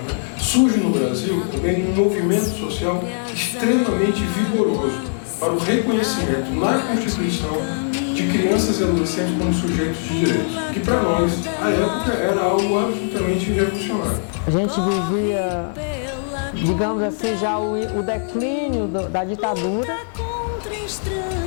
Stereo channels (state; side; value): silent; right; 65 dB below the other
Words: surge no Brasil também um movimento social extremamente vigoroso para o reconhecimento na Constituição de crianças e adolescentes como sujeitos de direitos, que para nós, à época, era algo absolutamente revolucionário. A gente vivia, digamos assim, já o declínio da ditadura,